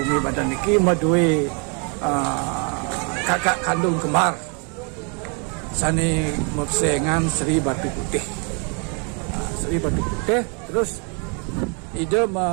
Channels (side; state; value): left; quieter; 36.4 dB